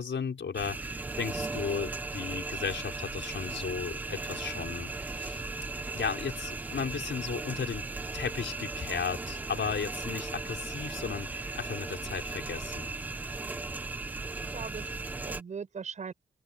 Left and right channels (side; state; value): both; normal; correlation 0.30